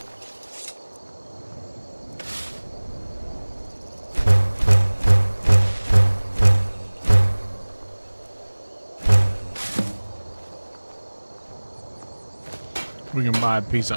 We can buy a piece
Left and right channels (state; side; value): inverted; both; correlation -1.00